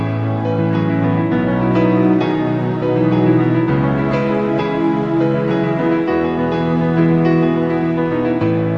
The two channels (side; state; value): both; identical; correlation 1.00